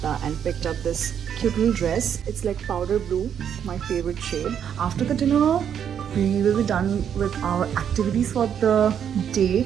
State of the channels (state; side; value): quieter; left; 8.6 dB